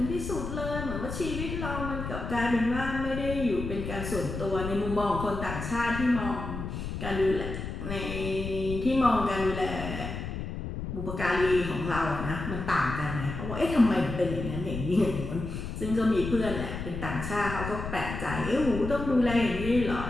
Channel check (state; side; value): noise; left; rumble, 6 dB below the sound